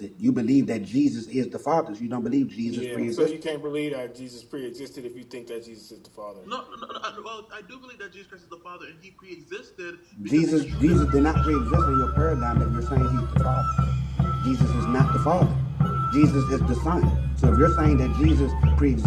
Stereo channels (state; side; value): identical; both; correlation 1.00